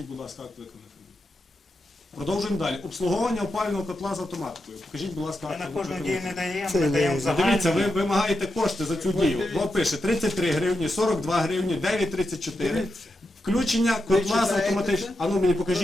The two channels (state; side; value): normal; both; correlation 0.87